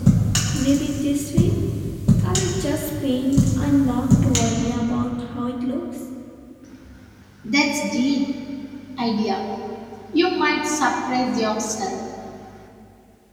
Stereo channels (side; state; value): both; identical; correlation 1.00